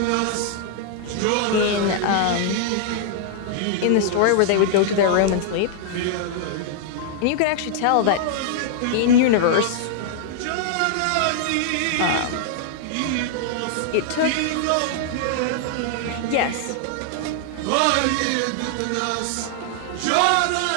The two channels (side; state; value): both; different; correlation -0.01